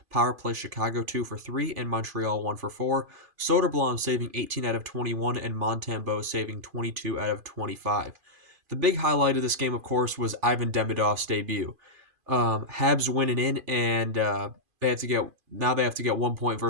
Power play Chicago 2 for 3 and Montreal 1 for 4. Soderblom saving 18 out of 21 and Montembeault saving 22 out of 25. The big highlight of this game, of course, was Ivan Demidov's debut. Habs winning in, and they have to get 1 point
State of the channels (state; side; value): late; left; 2.5 ms